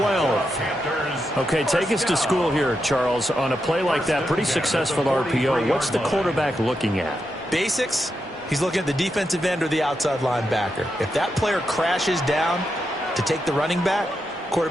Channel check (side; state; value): both; normal; correlation 0.85